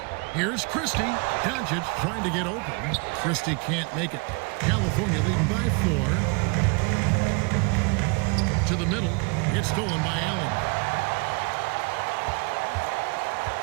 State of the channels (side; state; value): left; quieter; 31.6 dB